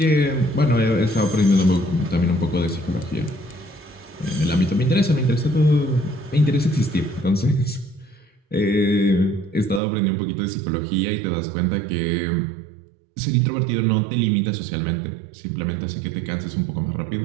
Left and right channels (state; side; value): drops out; left; at 9.8 s